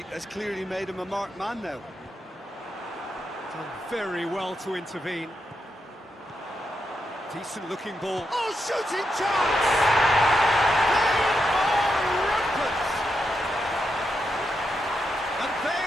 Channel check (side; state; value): both; normal; correlation 0.84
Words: has clearly made him a marked man now. Done very well to intervene. Decent looking ball. Oh, shooting chance! They are rampant! And they